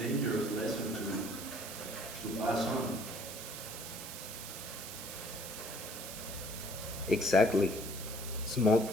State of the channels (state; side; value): noise; right; hiss, 9 dB below the sound